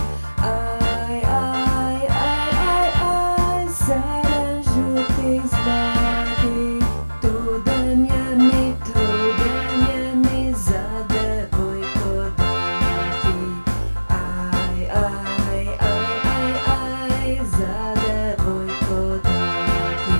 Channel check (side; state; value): both; inverted; correlation -1.00